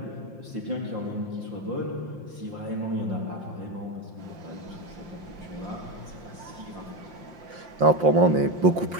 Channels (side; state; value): left; late; 5.7 ms